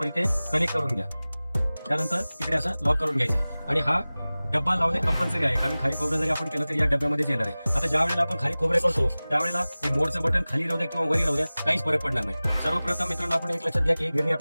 इथे कनेक्ट करून घ्या. त्यानंतर इकडे असा लॉक करून घ्यायचा आहे आणि हा डब्बा लावणे कंपल्सरी आहे, कारण खाली खोबरं जरी आपण केलं तरी या डब्यामध्येच येणार आहे. आता ज्या वेळेला आपण खाली खोबरे करतो त्यावेळेला हे मोडचं बटन खाली राहू द्या किंवा वरी राहू द्या, काहीच फरक पडणार नाही. सर्वप्रथम मित्रांनो, आपण एक लक्षात घ्या की गिरणी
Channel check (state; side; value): inverted; both; correlation -0.98